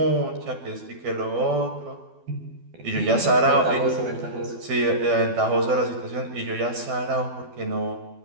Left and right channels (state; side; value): late; left; 12 ms